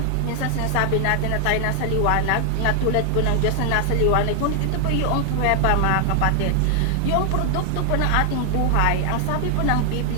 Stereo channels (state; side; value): different; both; correlation 0.00